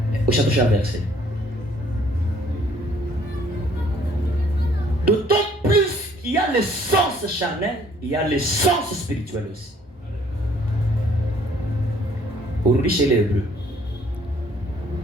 Au chapitre verset. D'autant plus il y a le sens charnel, il y a le sens spirituel aussi. Aujourd'hui chez les Hébreux.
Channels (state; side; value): normal; both; correlation 0.61